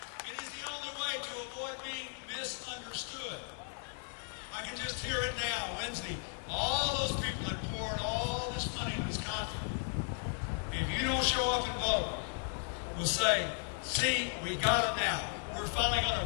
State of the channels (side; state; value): right; silent; 54 dB below the other